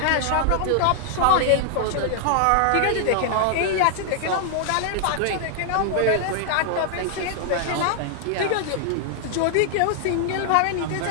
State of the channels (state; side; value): different; both; correlation -0.01